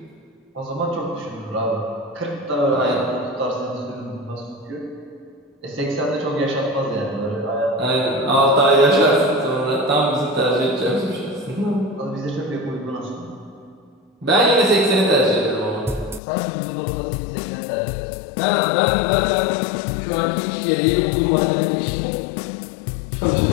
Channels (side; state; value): right; drops out; at 16.2 s